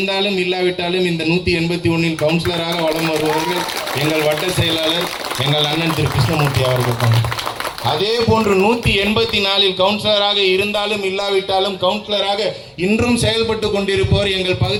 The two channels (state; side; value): identical; both; correlation 1.00